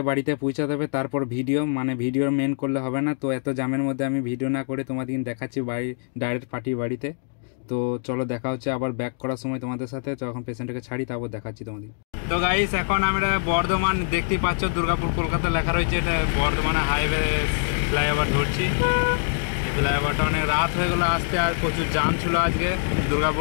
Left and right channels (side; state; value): right; silent; digital silence